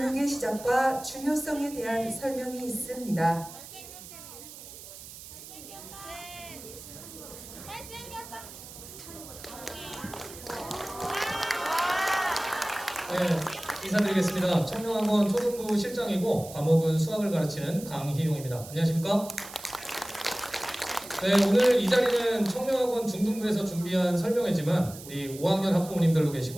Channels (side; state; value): right; noise; hiss, 15 dB below the sound